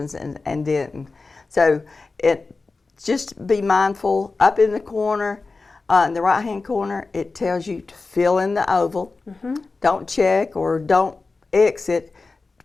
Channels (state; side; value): quieter; right; 3.9 dB